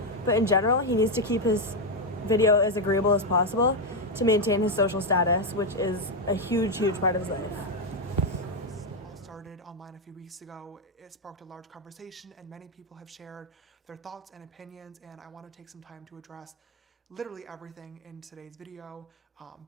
but in general, he needs to keep his video as agreeable as possible to maintain his social status, which is a huge part of his life. All started online a few weeks ago. It sparked a large conversation, and many people have shared their thoughts and opinions, and I want to take some time to address literally everything in today's video.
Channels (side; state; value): both; normal; correlation 0.04